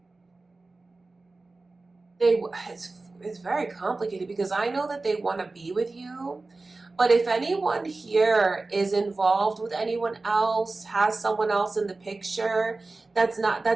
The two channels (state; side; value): quieter; left; 3.4 dB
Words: it's very complicated, because I know that they want to be with you, but if anyone here is involved with anyone else, has someone else in the picture, that's not